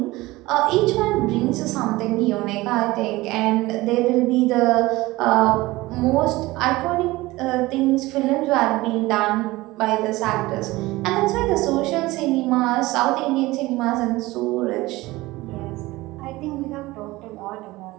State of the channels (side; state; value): left; quieter; 19.6 dB